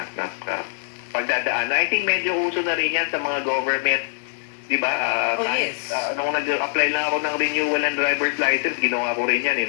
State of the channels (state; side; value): silent; right; digital silence